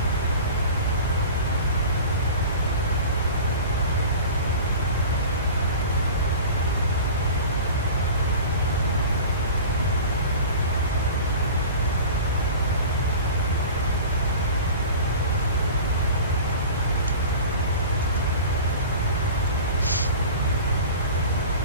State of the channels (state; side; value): inverted; both; correlation -0.37